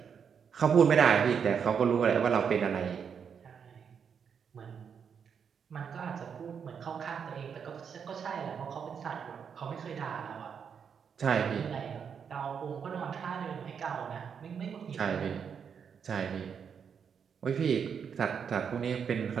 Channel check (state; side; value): quieter; left; 7.0 dB